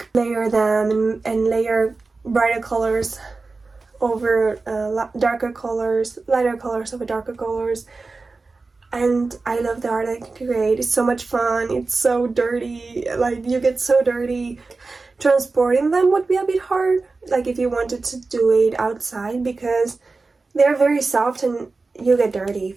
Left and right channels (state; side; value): quieter; left; 3.8 dB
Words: layer them and layer brighter colors over darker colors, lighter colors over darker colors. And I love the art I can create. It's so much fun. It's so dirty. Like you get so dirty. Transporting them would be a bit hard, like if you wanted to do it outside, because they're very soft and you get dirty